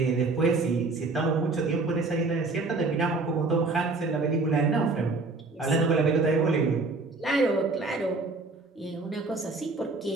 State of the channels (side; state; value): left; quieter; 3.6 dB